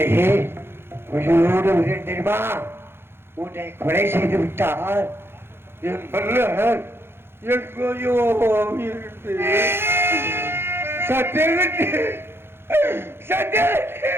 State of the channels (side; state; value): left; late; 0.11 ms